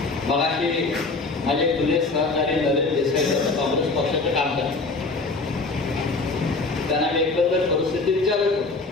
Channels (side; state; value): right; quieter; 3.6 dB